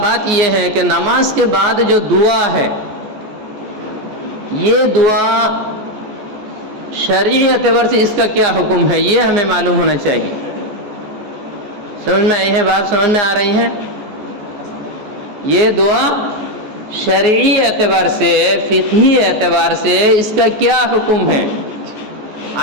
بات یہ ہے کہ نماز کے بعد جو دعا ہے، یہ دعا شرعی اعتبار سے اس کا کیا حکم ہے، یہ ہمیں معلوم ہونا چاہیے۔ سمجھ میں آئی ہے بات؟ سمجھ میں آ رہی ہے؟ یہ دعا شرعی اعتبار سے، فقہی اعتبار سے اس کا کیا حکم ہے؟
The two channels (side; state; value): left; late; 14 ms